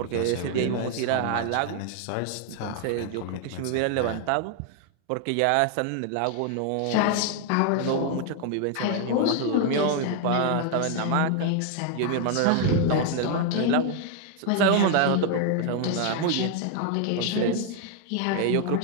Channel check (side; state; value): both; different; correlation 0.00